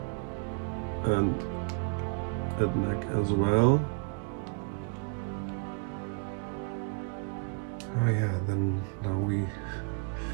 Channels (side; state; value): left; quieter; 33.3 dB